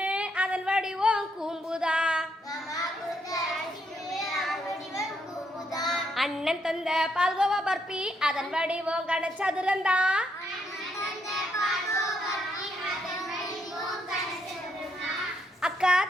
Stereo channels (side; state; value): both; normal; correlation 0.76